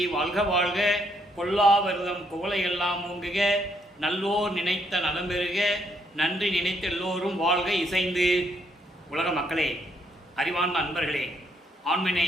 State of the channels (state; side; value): normal; both; correlation 0.72